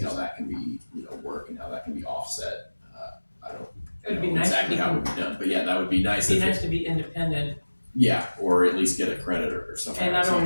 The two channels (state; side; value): inverted; both; correlation -1.00